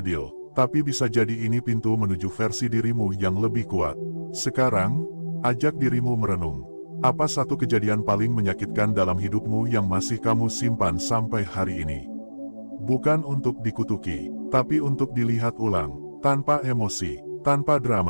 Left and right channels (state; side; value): inverted; both; correlation -1.00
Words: Tapi bisa jadi ini pintu menuju versi dirimu yang lebih kuat. Sekarang, ajak dirimu merenung. Apa satu kejadian paling menyakitkan dalam hidupmu yang masih kamu simpan sampai hari ini? Bukan untuk dikutuki, tapi untuk dilihat ulang, tanpa emosi, tanpa